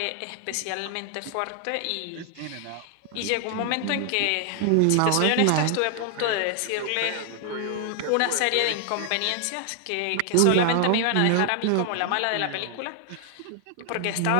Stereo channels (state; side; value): different; both; correlation 0.00